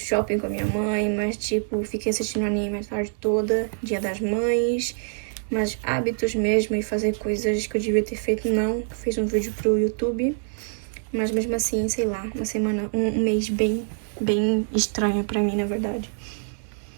com a minha mãe, mas, tipo, fiquei assistindo anime a tarde toda, Dia das Mães. Mas hábitos mesmo e fazer coisas que eu devia ter feito, não. Fiz um vídeo pro YouTube, mas mesmo assim, sei lá, uma semana, um mês bem estranho pra mim, na verdade.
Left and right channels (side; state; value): left; silent; digital silence